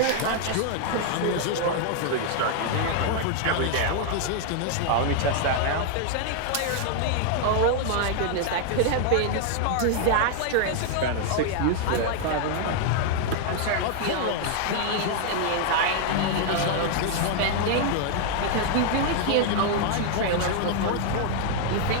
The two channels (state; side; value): different; both; correlation 0.00